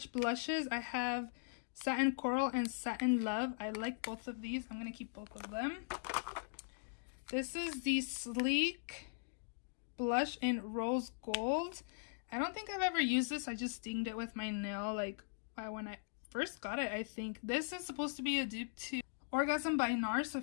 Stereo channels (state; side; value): silent; right; digital silence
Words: blushes. I have Satin Coral and Satin Love. I like both of these. I'm going to keep both of them. This is the Sleek blush in Rose Gold. I don't think I've ever used this. I just dinged it with my nail like when I first got it, I think. This is supposed to be a dupe to Orgasm by NARS. So